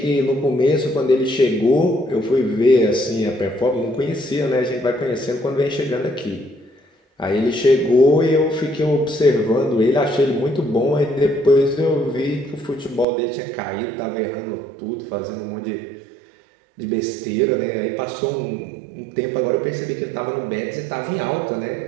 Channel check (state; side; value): drops out; left; at 13.1 s